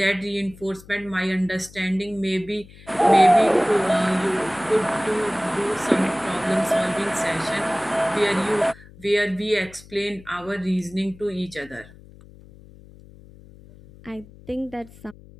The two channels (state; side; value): noise; left; hum, 21 dB below the sound